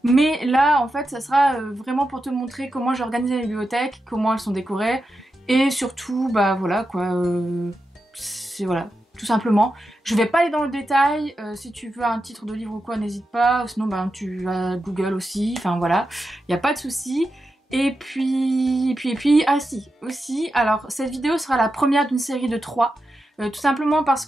Mais là en fait ça sera vraiment pour te montrer comment j'ai organisé les bibliothèques, comment elles sont décorées et surtout bah voilà quoi, c'est voilà. Tout simplement. Je vais pas aller dans le détail, si tu veux un titre de livre ou quoi, n'hésite pas, sinon ben, tu vas Google aussi, enfin voilà, il n'y a pas de souci. Et puis, ah si, aussi, alors cette vidéo sera la première d'une série de 3, tout simplement parce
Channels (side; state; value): both; normal; correlation 0.89